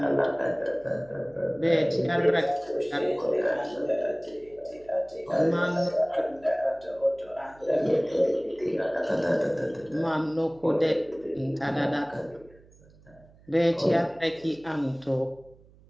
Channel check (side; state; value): right; noise; hum, 26 dB below the sound